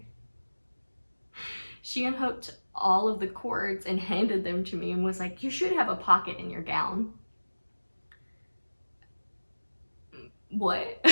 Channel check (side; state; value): both; inverted; correlation -1.00